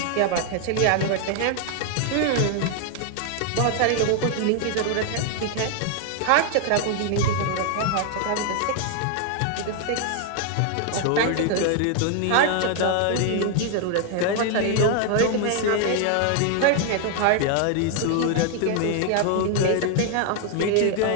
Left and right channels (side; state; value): both; different; correlation 0.00